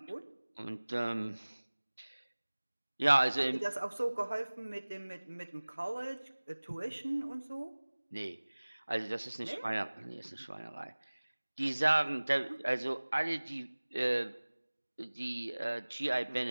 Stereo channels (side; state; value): both; inverted; correlation -1.00